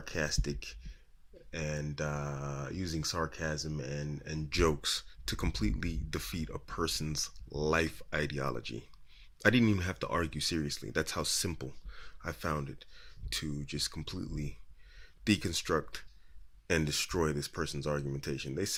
and using sarcasm and jokes to completely defeat a person's life ideology. I didn't even have to argue seriously. That's how simple I found it to just completely deconstruct and destroy this person's argumentation. They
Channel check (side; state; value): both; identical; correlation 1.00